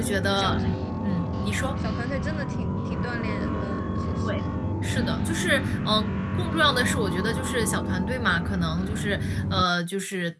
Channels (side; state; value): both; identical; correlation 1.00